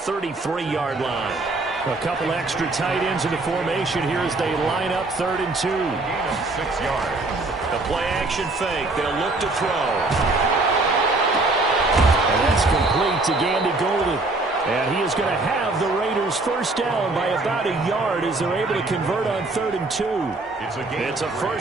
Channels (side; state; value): left; quieter; 3.2 dB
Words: line. A couple extra tight ends in the formation here as they line up 3rd and 2. Gain of 6 yards. The play-action fake. They'll look to throw. And that's complete to Gandy Golden. And he is going to have the Raiders first down by about a yard as they're able to convert on 3rd and 2. It's a